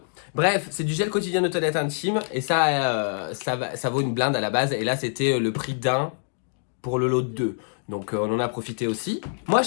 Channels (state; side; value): silent; right; digital silence